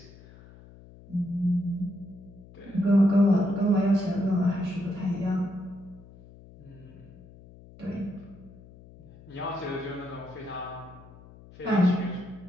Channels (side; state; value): left; noise; hum, 21 dB below the sound